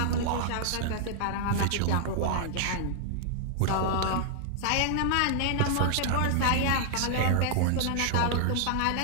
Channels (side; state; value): both; different; correlation -0.01